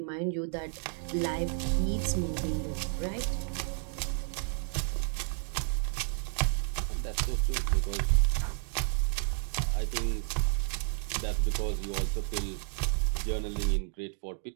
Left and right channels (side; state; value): left; silent; 57 dB below the other